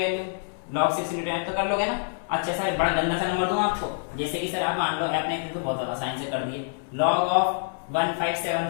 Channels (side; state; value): right; silent; 61 dB below the other